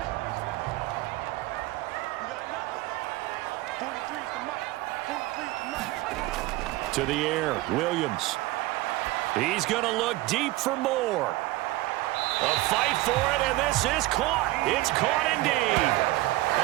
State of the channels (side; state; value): left; quieter; 18.8 dB